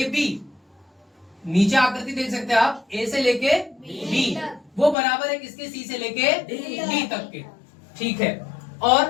नीचे आकृति देख सकते हैं आप, A से लेके B, वो बराबर है किसके? C से लेके D तक के। ठीक है।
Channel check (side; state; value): right; drops out; at 5.0 s